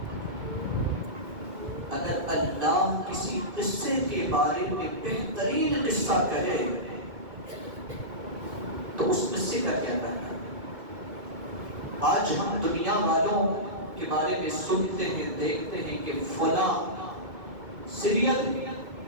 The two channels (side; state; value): left; late; 2.2 ms